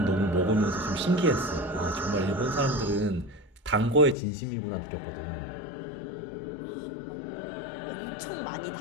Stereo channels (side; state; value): right; drops out; at 4.2 s